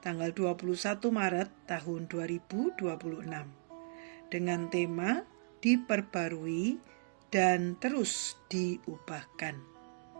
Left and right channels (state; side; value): silent; left; digital silence